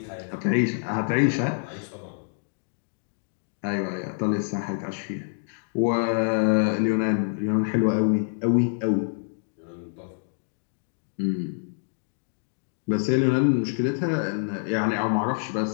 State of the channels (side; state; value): right; silent; digital silence